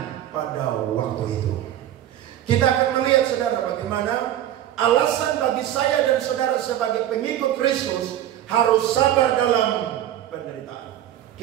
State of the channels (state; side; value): quieter; left; 12.0 dB